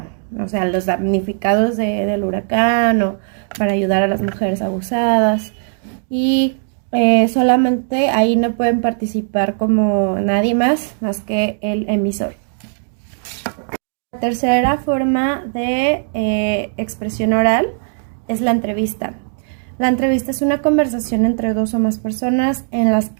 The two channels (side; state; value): left; silent; digital silence